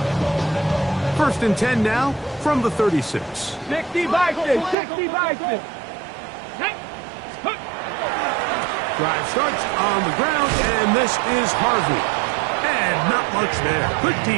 1st and 10 now from the 36. 60 Bison, 60 Bison. Drive starts on the ground, and this is Harvey. And not much there. Good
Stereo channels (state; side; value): drops out; left; at 4.8 s